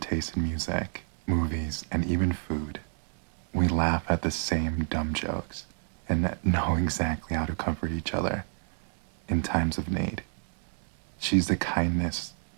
in music, movies, and even food. We laugh at the same dumb jokes and know exactly how to comfort each other in times of need. She's the kindest,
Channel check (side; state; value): left; silent; 58 dB below the other